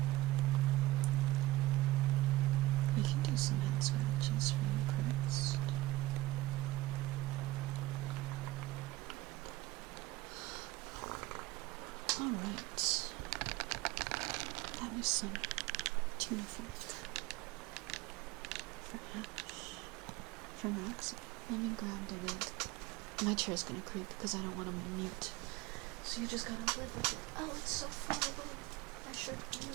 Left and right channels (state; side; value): quieter; left; 18.0 dB